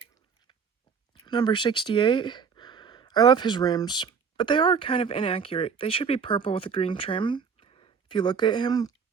Number 68. I love his rims, but they are kind of inaccurate. They should be purple with a green trim if you look at him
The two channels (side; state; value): left; quieter; 6.2 dB